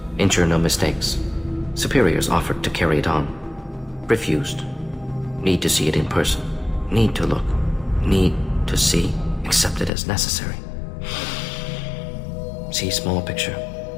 Ensure no mistakes. Superiors offered to carry it on. Refused. Need to see it in person. Need to look. Need to see. Accept it as necessary. See small picture.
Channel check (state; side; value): drops out; right; at 9.9 s